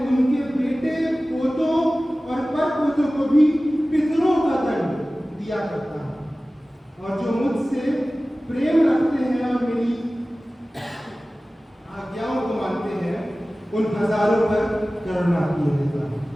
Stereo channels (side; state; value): both; normal; correlation 0.97